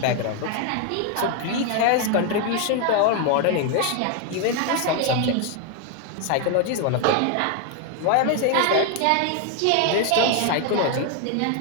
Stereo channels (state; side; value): different; both; correlation 0.01